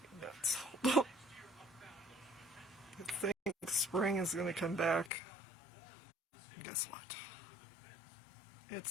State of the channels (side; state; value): right; drops out; at 5.1 s